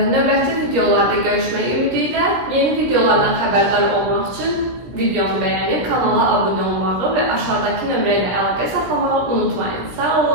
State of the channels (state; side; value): late; left; 17 ms